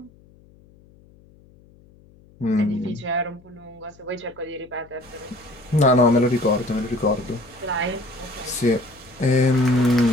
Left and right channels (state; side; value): noise; left; hum, 27 dB below the sound